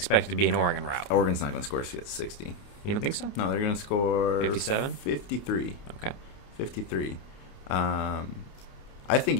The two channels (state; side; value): late; right; 29 ms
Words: to be an Oregon rout. Oregon's not going to score 60. You don't think so? No, they're going to score 57? 53. Okay. 53. I think